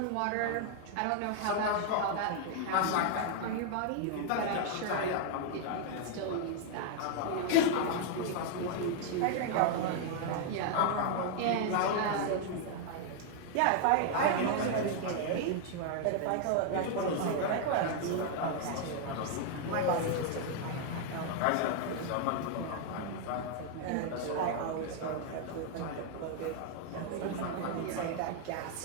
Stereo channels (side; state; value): both; different; correlation 0.00